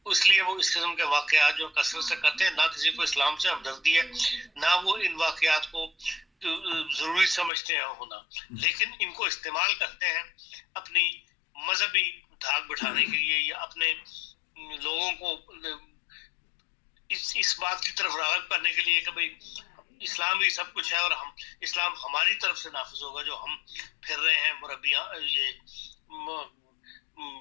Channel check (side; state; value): right; drops out; at 7.5 s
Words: اس لیے وہ اس قسم کے واقعات جو کثرت سے کرتے ہیں، نہ کسی کو اسلام سے ہمدردی ہے، نہ وہ ان واقعات کو ضروری سمجھتے ہیں ہونا، لیکن ان کو استعمال کرتے ہیں اپنی مذہبی دھاک بٹھانے کے لیے، یا اپنے لوگوں کو اس بات کی طرف راغب کرنے کے لیے کہ بھئی اسلام ہی سب کچھ ہے، اور ہم اسلام ہماری طرف سے نافذ ہوگا، جو ہم پھر رہے ہیں مربیان، یہ